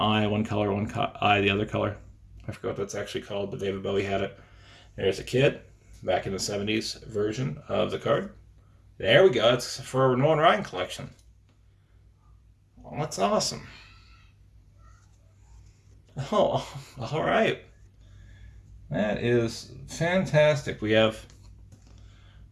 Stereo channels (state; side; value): identical; both; correlation 1.00